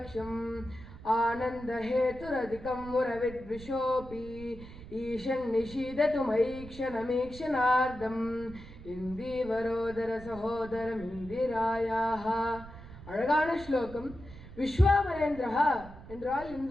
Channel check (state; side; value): noise; right; rumble, 15 dB below the sound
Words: ஆனந்த ஹேதுரதிகம் முரவித்விஷோபி ஈஷன் நிஷீதது மைக்ஷணமீக்ஷணார்த்தம் இந்தீவரோதர சகோதரம் இந்திராயாஹ. அழகான ஸ்லோகம். விஸ்வாமரேந்திரா என்றால்